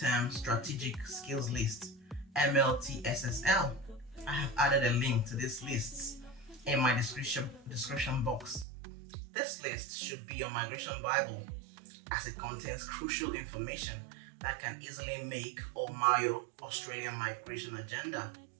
strategic skills list, MLTSSL. I have added a link to these lists in my description box. This list should be your migration Bible, as it contains crucial information that can easily make or mar your Australian migration agenda.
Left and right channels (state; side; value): drops out; left; at 8.7 s